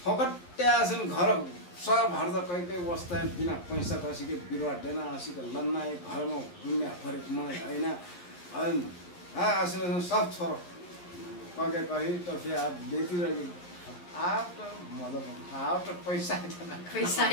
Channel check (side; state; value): right; late; 11 ms